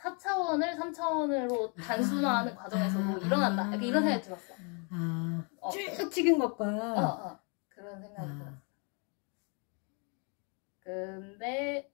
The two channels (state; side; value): quieter; right; 36.0 dB